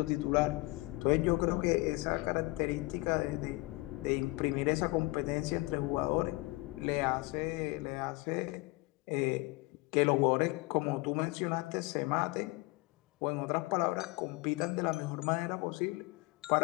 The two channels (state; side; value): quieter; right; 22.9 dB